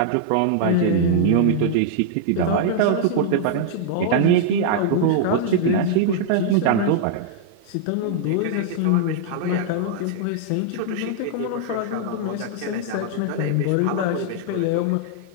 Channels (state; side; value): different; both; correlation -0.01